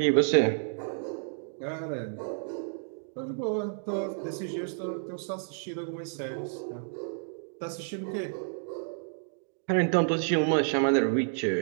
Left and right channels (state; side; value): silent; left; digital silence